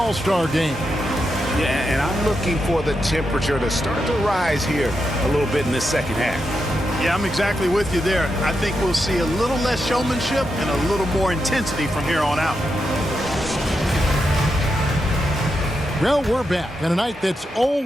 game. Yeah, and I'm looking for the temperature to start to rise here a little bit in this second half. Yeah, I'm exactly with you there. I think we'll see a little less showmanship and a little more intensity from here on out. Well, we're back on a night that's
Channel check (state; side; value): normal; both; correlation 0.85